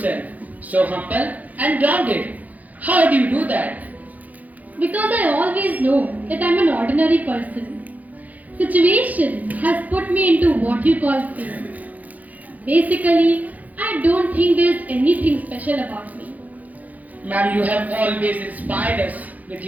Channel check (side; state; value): left; late; 0.078 ms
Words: so humble and grounded. How do you do that? Because I always know that I'm an ordinary person. Situation has put me into what you call fame. Basically, I don't think there's anything special about me. Ma'am, you have always inspired us with